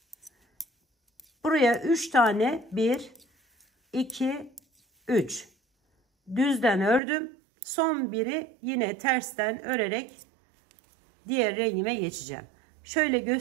Buraya 3 tane 1, 2, 3. Düzden ördüm. Son biri yine tersten örerek diğer rengime geçeceğim. Şöyle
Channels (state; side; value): drops out; left; at 7.0 s